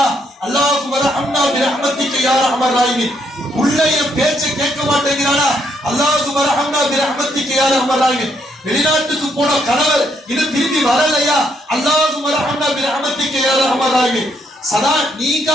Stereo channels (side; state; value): both; normal; correlation 0.73